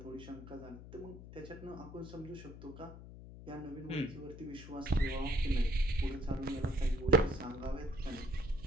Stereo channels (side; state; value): left; noise; hum, 14 dB below the sound